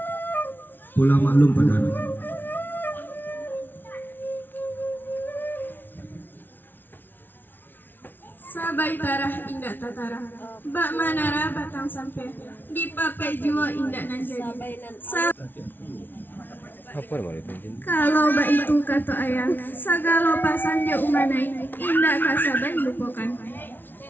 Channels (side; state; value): right; late; 0.093 ms